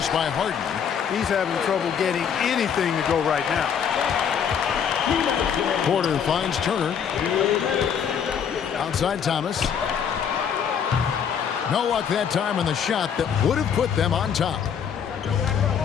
by Harden. He's having trouble getting anything to go right now. Porter finds Turner. Outside Thomas. No luck that time on the shot that would have put them on top.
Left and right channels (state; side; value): quieter; right; 7.7 dB